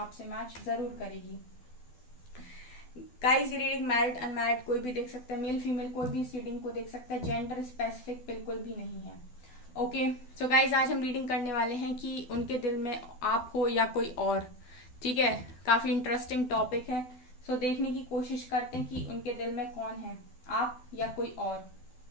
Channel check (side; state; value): right; late; 12 ms